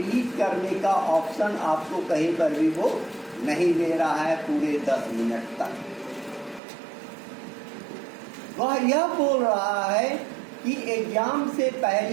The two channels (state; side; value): drops out; left; at 6.6 s